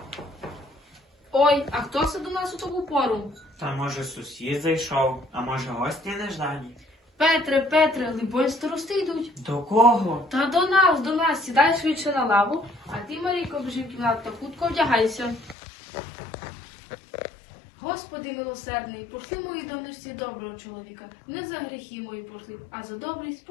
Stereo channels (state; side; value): drops out; right; at 15.6 s